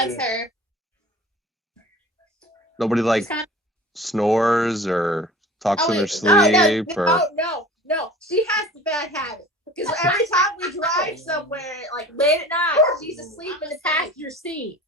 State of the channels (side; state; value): both; normal; correlation 0.41